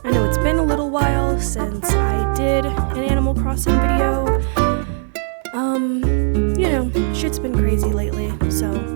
I know it's been a little while since I did an Animal Crossing video. You know, shit's been crazy lately, so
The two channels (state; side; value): silent; left; 63 dB below the other